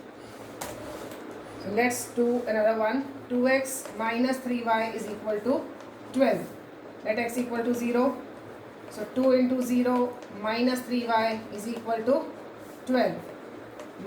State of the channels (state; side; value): identical; both; correlation 1.00